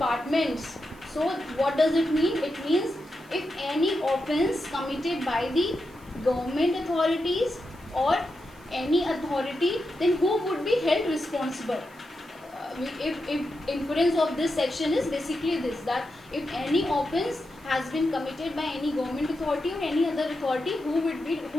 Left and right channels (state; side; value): noise; right; hiss, 28 dB below the sound